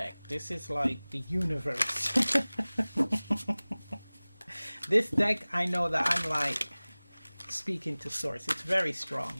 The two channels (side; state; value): both; inverted; correlation -1.00